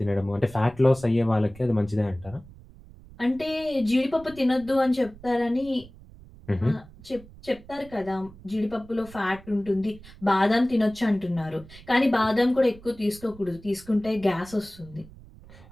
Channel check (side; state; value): right; noise; rumble, 20 dB below the sound